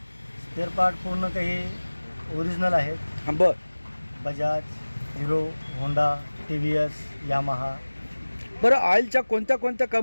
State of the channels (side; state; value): both; inverted; correlation -1.00